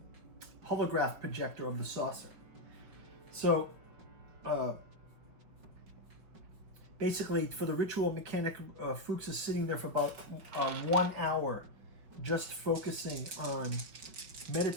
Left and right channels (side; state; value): left; late; 5.3 ms